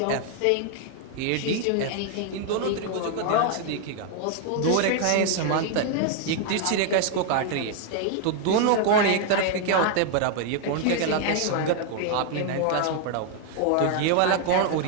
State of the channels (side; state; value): both; different; correlation 0.00